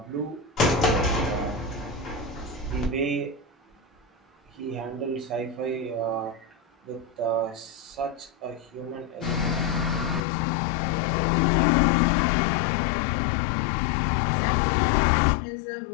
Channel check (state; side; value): drops out; right; at 10.2 s